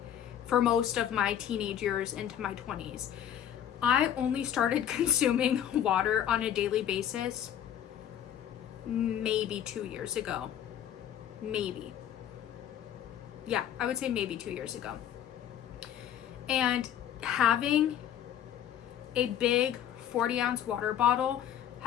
for most of my teenage years into my 20s. I only started consuming water on a daily basis maybe 2 years ago. Maybe. Yeah, I would say maybe 2 years ago. And having a big 40-ounce water bottle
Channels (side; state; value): right; quieter; 10.3 dB